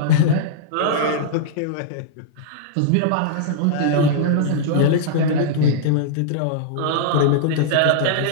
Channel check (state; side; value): different; both; correlation -0.02